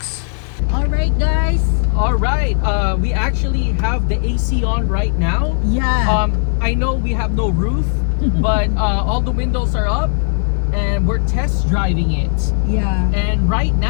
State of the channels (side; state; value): right; silent; 69 dB below the other